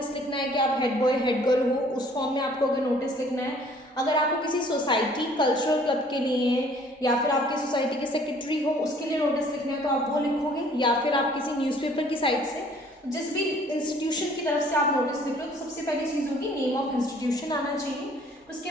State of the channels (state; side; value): normal; both; correlation 0.56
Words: लिखना है कि आप हेड बॉय हेड गर्ल हो, उस फॉर्म में आपको अगर नोटिस लिखना है। अगर आपको किसी सोसाइटी कल्चरल क्लब के लिए या फिर आपकी सोसाइटी के सेक्रेटरी हो उसके लिए नोटिस लिखना है तो आप वो लिखोगे, या फिर आप किसी न्यूज़पेपर की साइट से जिस भी इंस्टीट्यूशन की तरफ से आप नोटिस लिख रहे हो तो सबसे पहली चीज़ होगी नेम ऑफ इंस्टीट्यूशन आना चाहिए। उसके